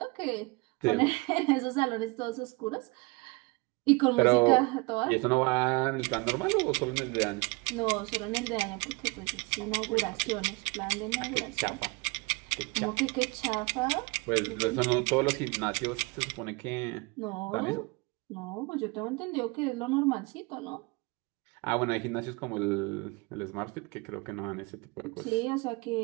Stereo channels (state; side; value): quieter; left; 27.5 dB